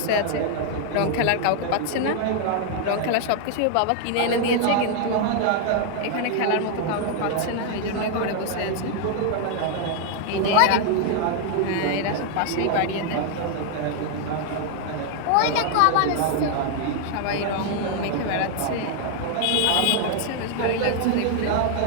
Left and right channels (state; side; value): different; both; correlation 0.00